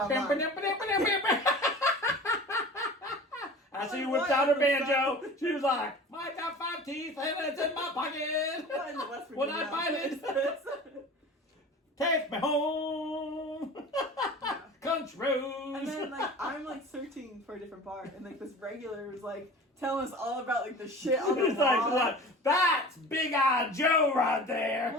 After you whipped out her banjo, she was like, I got 5 teeth and it's in my pocket. When I find it, take me home. Country roads. And then like I'm like searching for a different bar, and like this regular was like telling us all about like the shit on the wall. It's like, what? That's Big Eye Joe right there.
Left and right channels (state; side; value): normal; both; correlation 0.39